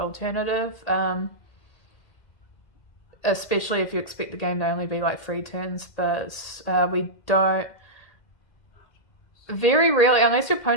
Especially if you expect the game to only be like 3 turns, but we don't, very rarely, unless your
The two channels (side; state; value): right; late; 1.8 ms